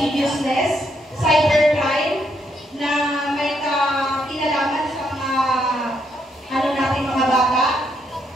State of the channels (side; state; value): both; normal; correlation 0.76